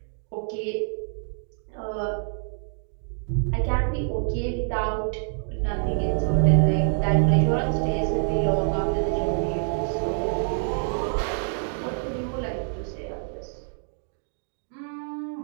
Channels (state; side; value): silent; left; 61 dB below the other